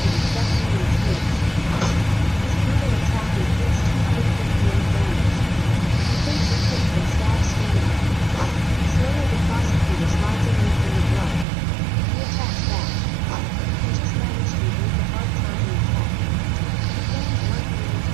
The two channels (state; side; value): drops out; left; at 11.5 s